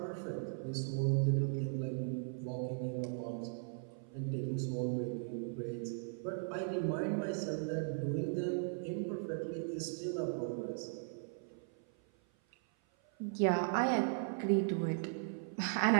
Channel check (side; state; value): left; silent; 53 dB below the other